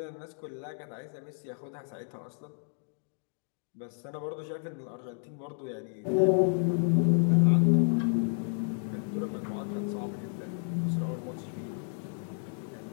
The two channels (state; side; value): silent; right; 57 dB below the other